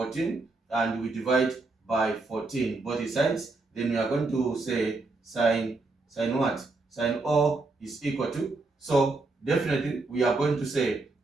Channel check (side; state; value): left; quieter; 3.4 dB